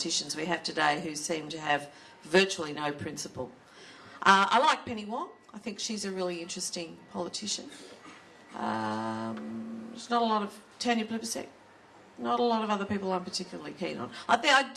we have today who seem to have virtually no principle. I like Penny Wong. I think she's a really interesting politician. There's not a lot of Tanya Plibersek. Not a lot of other people I'm particularly keen on. I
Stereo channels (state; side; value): identical; both; correlation 1.00